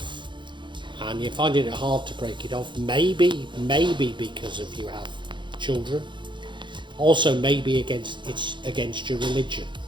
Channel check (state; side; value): late; left; 0.23 ms